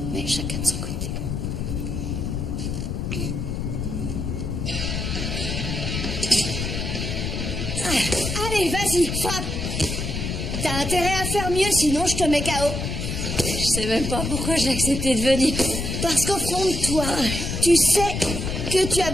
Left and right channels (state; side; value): noise; left; rumble, 3 dB below the sound